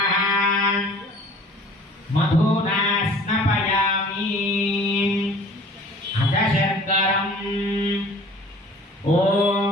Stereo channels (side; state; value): both; normal; correlation 0.48